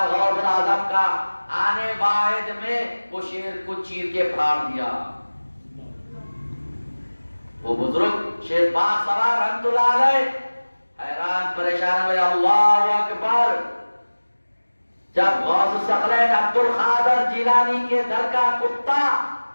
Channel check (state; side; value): inverted; both; correlation -1.00